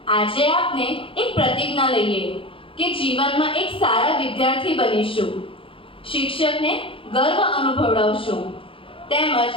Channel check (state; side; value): late; right; 0.26 ms